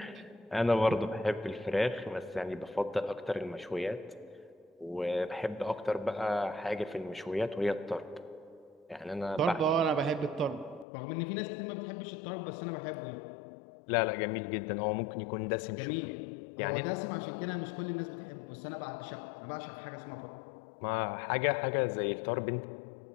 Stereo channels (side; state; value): right; drops out; at 10.9 s